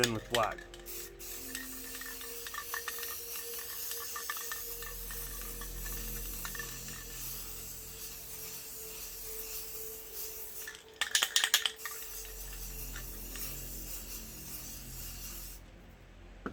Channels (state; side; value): identical; both; correlation 1.00